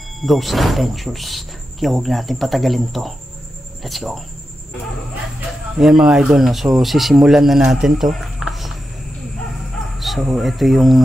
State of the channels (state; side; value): normal; both; correlation 0.90